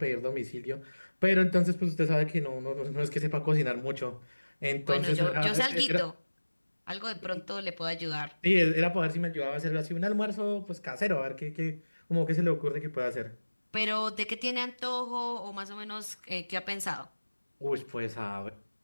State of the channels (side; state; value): both; inverted; correlation -1.00